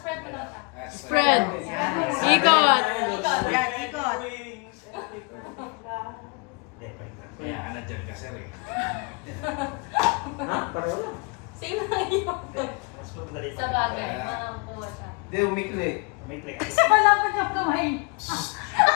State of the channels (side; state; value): right; quieter; 32.5 dB